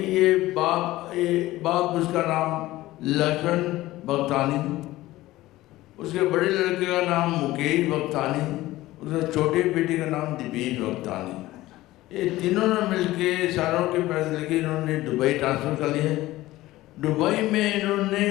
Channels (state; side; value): quieter; right; 17.0 dB